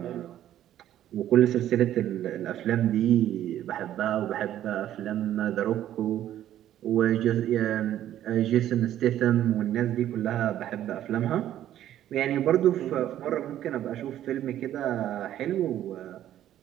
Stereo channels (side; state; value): left; quieter; 12.0 dB